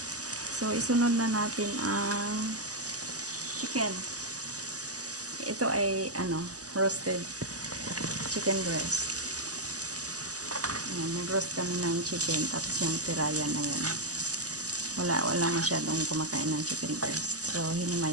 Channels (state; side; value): late; left; 0.67 ms